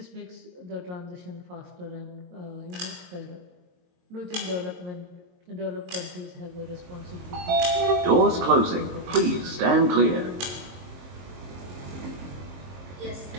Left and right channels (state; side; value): late; left; 23 ms